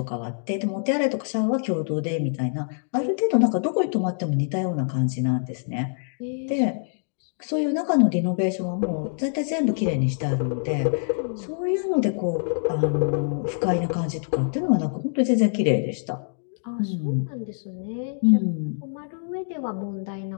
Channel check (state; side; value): silent; right; digital silence